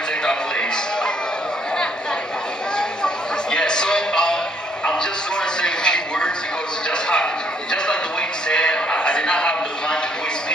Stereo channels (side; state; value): both; normal; correlation 0.67